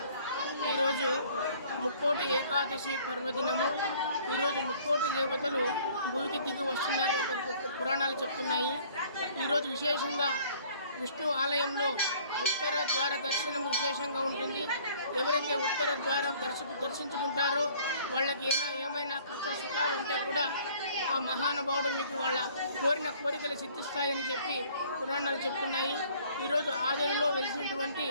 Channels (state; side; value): inverted; both; correlation -0.55